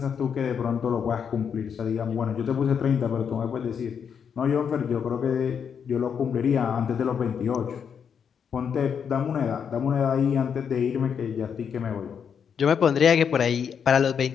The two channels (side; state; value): right; quieter; 7.3 dB